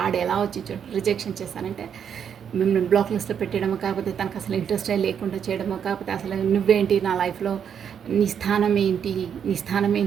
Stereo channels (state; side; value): quieter; left; 8.0 dB